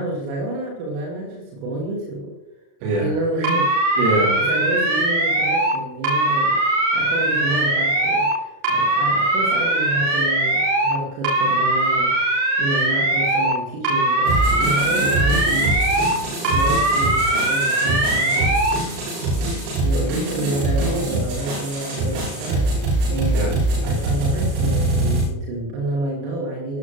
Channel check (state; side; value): late; left; 36 ms